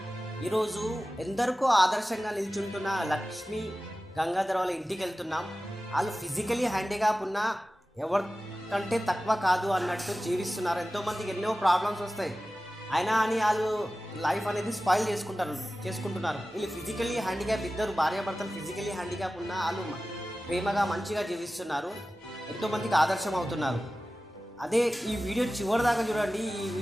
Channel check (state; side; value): normal; both; correlation 0.95